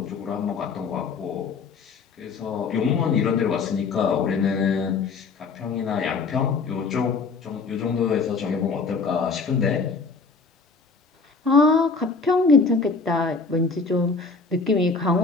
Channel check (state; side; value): quieter; right; 4.5 dB